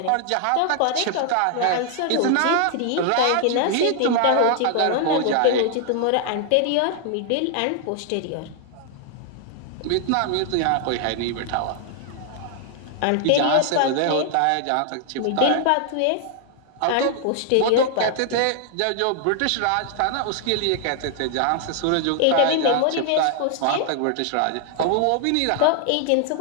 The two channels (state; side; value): different; both; correlation 0.00